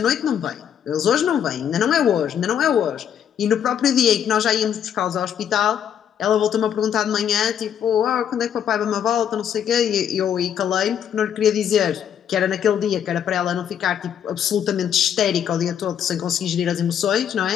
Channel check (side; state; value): right; quieter; 9.0 dB